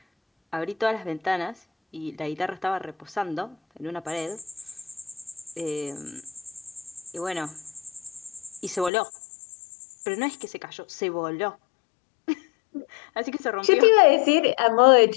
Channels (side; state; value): right; drops out; at 8.9 s